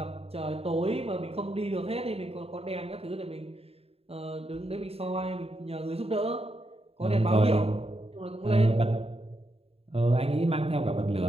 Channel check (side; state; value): left; late; 0.29 ms